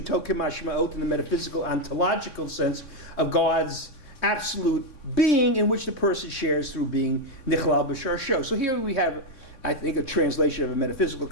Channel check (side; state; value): right; late; 3.6 ms